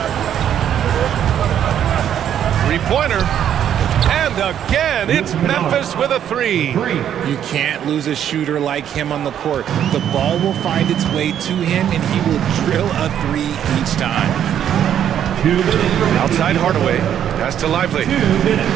Three-pointer. And again, it's Memphis with a 3. You can't lose a shooter like him on the court. The ball will find its way to him, and he will drill a 3 each time. Outside Hardaway. Pass to Lively.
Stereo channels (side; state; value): left; quieter; 9.8 dB